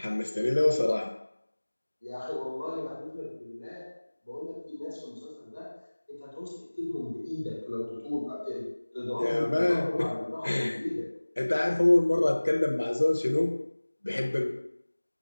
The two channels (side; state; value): both; inverted; correlation -1.00